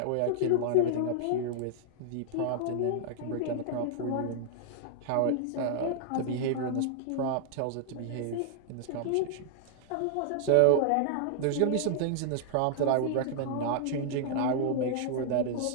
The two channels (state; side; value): different; both; correlation -0.01